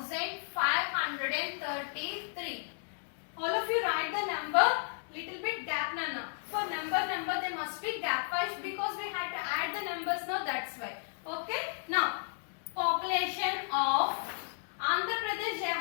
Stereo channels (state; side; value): silent; right; digital silence